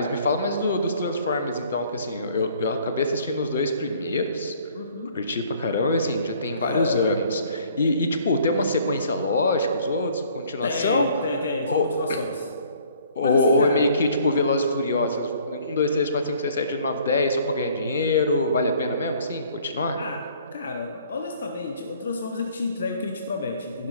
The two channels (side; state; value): both; inverted; correlation -0.58